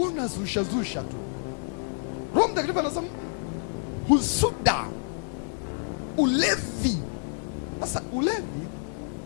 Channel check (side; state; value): right; silent; 59 dB below the other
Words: tu. Roho Mtakatifu anasema husuda. Ulevi. Sasa ulevi